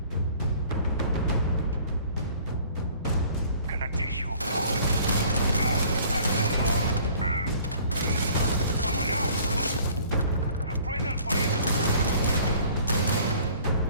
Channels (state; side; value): inverted; both; correlation -0.53